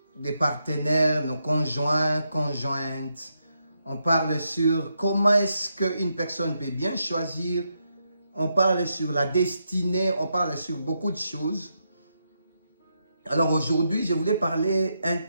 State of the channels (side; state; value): both; inverted; correlation -0.82